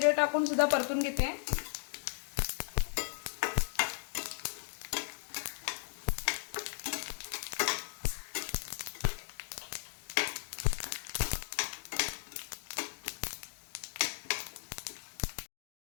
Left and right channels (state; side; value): silent; right; digital silence